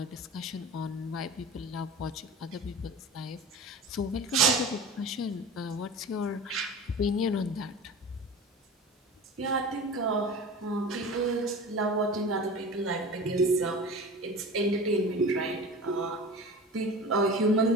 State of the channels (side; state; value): both; normal; correlation 0.34